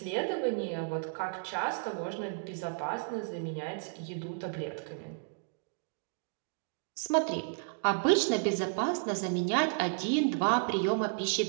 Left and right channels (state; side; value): silent; left; digital silence